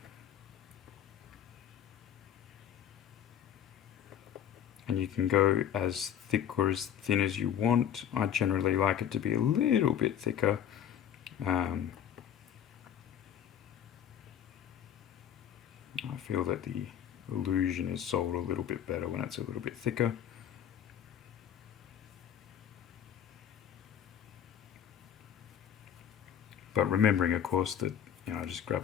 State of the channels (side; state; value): right; quieter; 9.4 dB